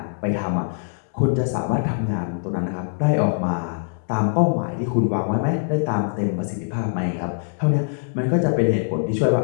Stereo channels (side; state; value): right; silent; digital silence